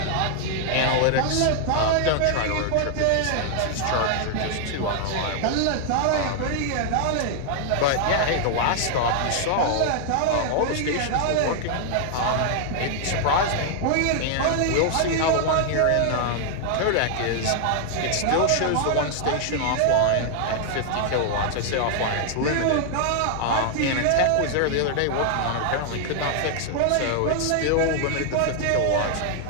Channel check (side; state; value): both; different; correlation 0.00